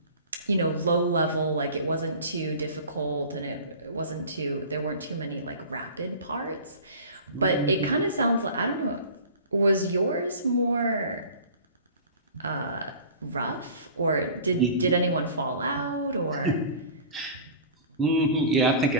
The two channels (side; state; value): both; inverted; correlation -0.39